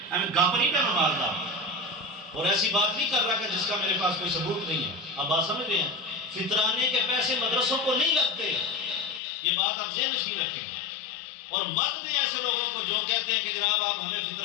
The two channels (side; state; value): right; drops out; at 9.2 s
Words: میں گپ نہیں کر مارتا اور ایسی بات نہیں کر رہا کہ جس کا میرے پاس کوئی ثبوت نہیں ہے. آپ بات سمجھ رہے ہیں؟ فطرانے کے پیسے مدرسوں کو نہیں لگتے، یہ بات آپ ذہن نشین رکھیں. اور مت دیں ایسے لوگوں کو جو کہتے ہیں کہ جناب آپ ہمیں